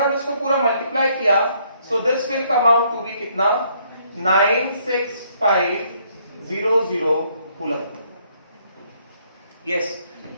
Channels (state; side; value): inverted; both; correlation -0.69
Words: इसको पूरा मल्टीप्लाई किया, so this will come out to be कितना? 96500 कूलम। यस,